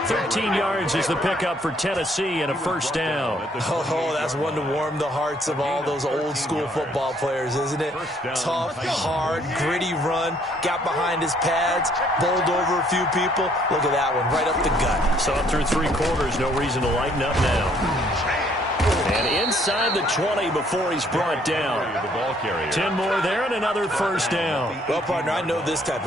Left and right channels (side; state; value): both; normal; correlation 0.64